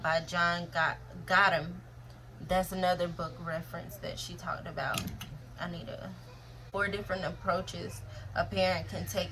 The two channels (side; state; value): both; identical; correlation 1.00